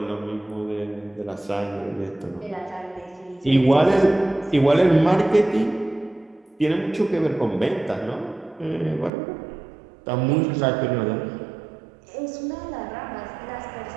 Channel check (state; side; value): drops out; left; at 9.1 s